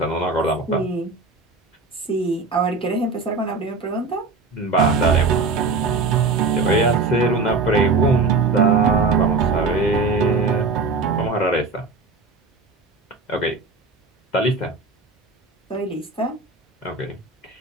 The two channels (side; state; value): left; quieter; 3.8 dB